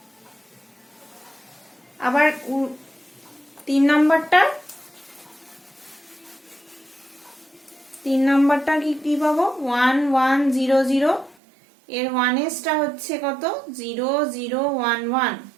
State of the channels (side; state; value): left; drops out; at 11.4 s